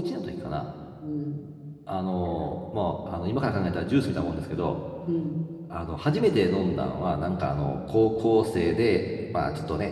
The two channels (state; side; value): identical; both; correlation 1.00